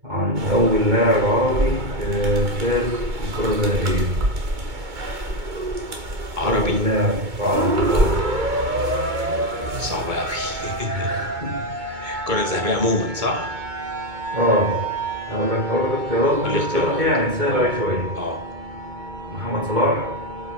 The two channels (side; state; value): left; late; 2.2 ms